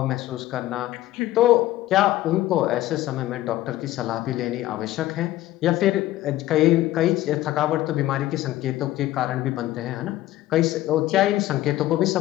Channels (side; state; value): right; quieter; 15.2 dB